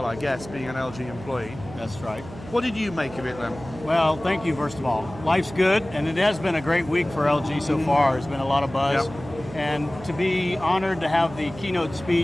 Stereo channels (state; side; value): noise; right; hum, 15 dB below the sound